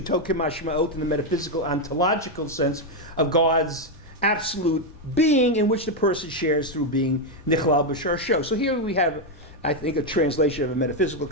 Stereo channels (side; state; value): both; normal; correlation 0.03